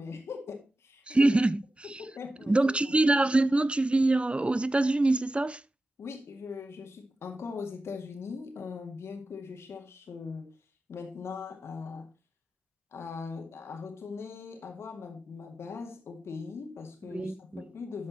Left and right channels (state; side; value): normal; both; correlation 0.93